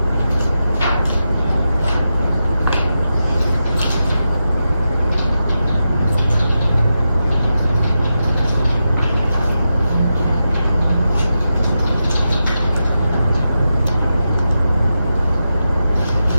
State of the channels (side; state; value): both; inverted; correlation -0.90